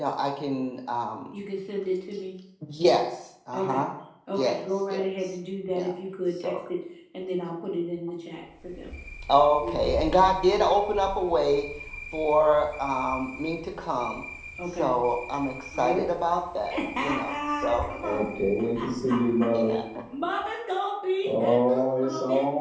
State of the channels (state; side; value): identical; both; correlation 1.00